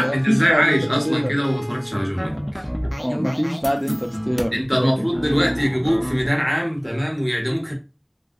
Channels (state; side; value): identical; both; correlation 1.00